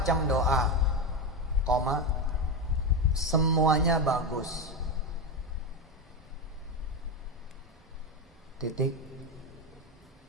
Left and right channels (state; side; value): normal; both; correlation 0.13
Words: doa. Koma. Semuanya bagus. Titik.